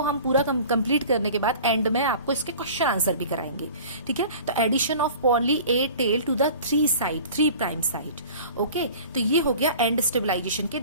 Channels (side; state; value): both; inverted; correlation -0.43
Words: हम पूरा कंप्लीट करने के बाद एंड में आपको इसके क्वेश्चन आंसर भी कराएंगे. ठीक है, तो addition of poly A tail to the 3 prime site. Okay, तो ये हो गया एंड स्टेबलाइजेशन के